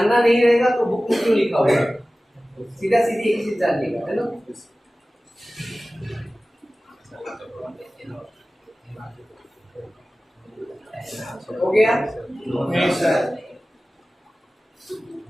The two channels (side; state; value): both; normal; correlation 0.97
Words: नहीं रहेगा तो बुक में क्यों लिखा होगा, सीधा सीधी एक चीज जानिएगा, है ना। हो गया,